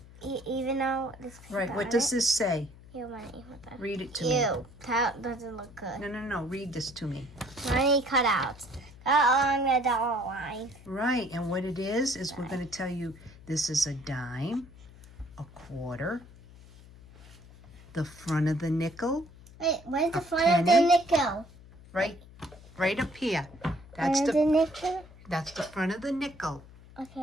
even though this. Right. What does this say? Real money. What the? Read it to me. Ew, that doesn't look good. No. Read this to me. Money cutouts. Along the dollar line. Right. And what it is we're going to tell you this is a dime, a quarter, the front of the nickel. Wait, where's the A front of the penny? nickel? Right up here. That's Front of the nickel? that's the front of the nickel.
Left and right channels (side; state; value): left; noise; hum, 21 dB below the sound